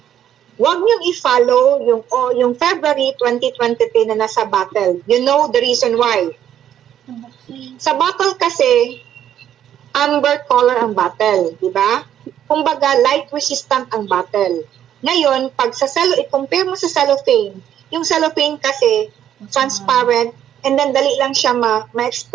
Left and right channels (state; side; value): quieter; left; 10.5 dB